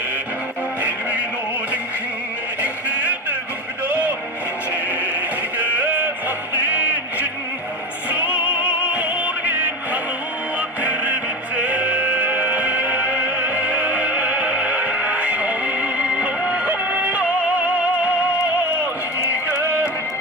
Элвинодин хэн ихнэдэ гүгдо Хичээгэ сахдин чин Сургин хануа тэрбитэ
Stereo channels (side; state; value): both; normal; correlation 0.25